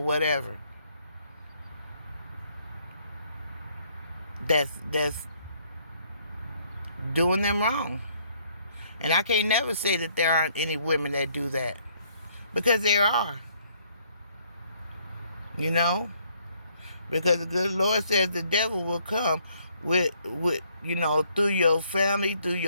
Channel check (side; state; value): both; inverted; correlation -0.67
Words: that's doing them wrong. And I can't never say that there aren't any women that do that, because there are. You know, because the good Lord says the devil will come with you know, through your family, through